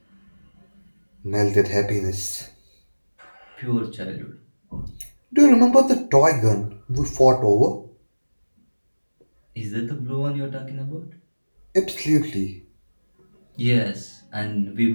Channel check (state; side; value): inverted; both; correlation -1.00